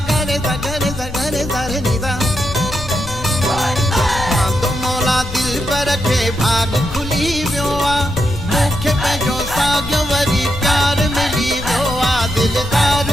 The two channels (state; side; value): noise; left; rumble, 10 dB below the sound